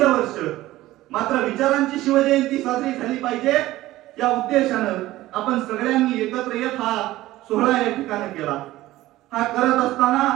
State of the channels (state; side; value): quieter; left; 16.4 dB